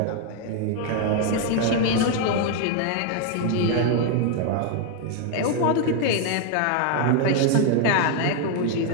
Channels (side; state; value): both; different; correlation 0.01